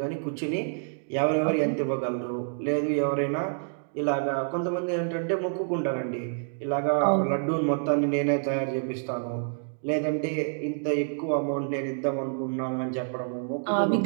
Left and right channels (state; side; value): silent; left; digital silence